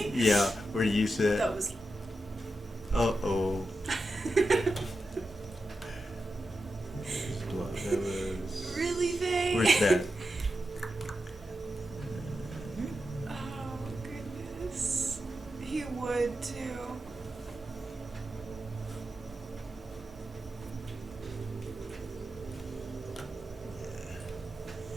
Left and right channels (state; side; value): normal; both; correlation 0.89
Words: Yeah, where you said, That was. uh-oh. That was... Really, Faye? Where's that? Oh, goodness. He would, too.